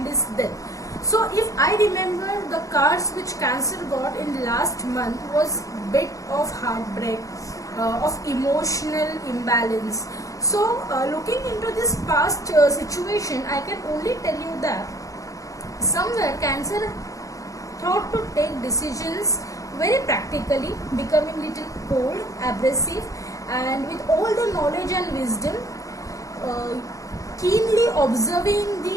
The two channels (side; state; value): right; late; 0.16 ms